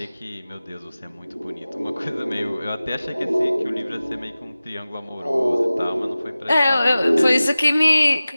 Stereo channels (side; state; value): both; inverted; correlation -0.97